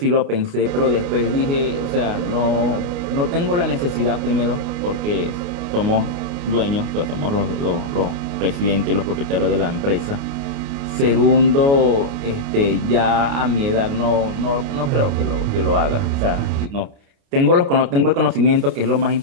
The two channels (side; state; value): left; late; 29 ms